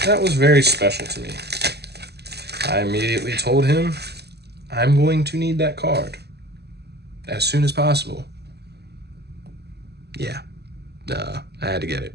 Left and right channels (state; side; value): late; left; 0.48 ms